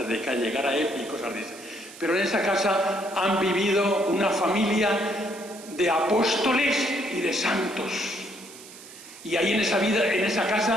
de que llegara él y cosas de esas. Pero en esa casa han vivido una familia de apóstoles y de santos. Y ahí en esa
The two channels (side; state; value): right; noise; hiss, 18 dB below the sound